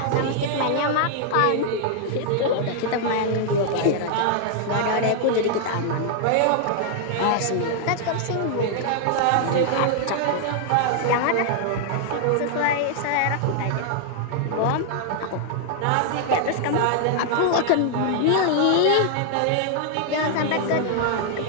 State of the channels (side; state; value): both; different; correlation -0.01